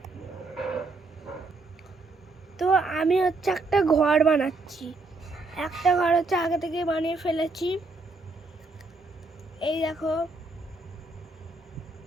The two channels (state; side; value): quieter; left; 3.4 dB